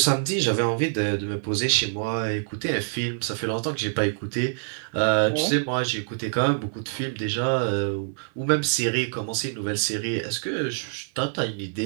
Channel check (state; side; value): silent; left; digital silence